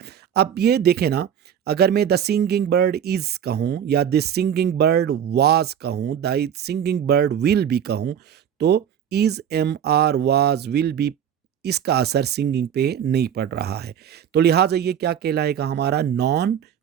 अब ये देखें ना, अगर मैं द सिंगिंग बर्ड इज कहूँ या द सिंगिंग बर्ड वाज कहूँ, the singing bird will be कहूँ, तो is am are was will be, इसका असर सिंगिंग पे नहीं पड़ रहा है। तो लिहाजा ये क्या कहलाएगा, हमारा नॉन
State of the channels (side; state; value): left; quieter; 9.1 dB